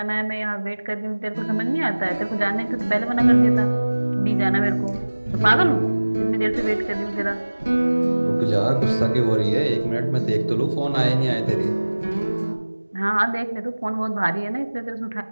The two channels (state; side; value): inverted; both; correlation -1.00